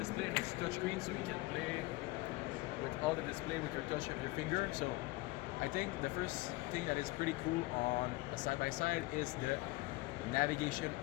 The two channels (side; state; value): right; quieter; 21.3 dB